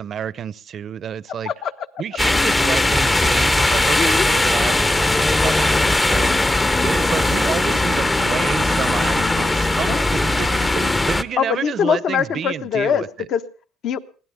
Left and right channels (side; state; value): both; normal; correlation 0.89